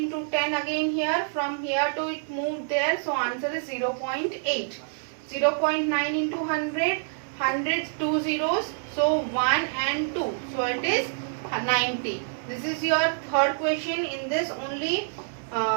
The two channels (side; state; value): left; silent; 60 dB below the other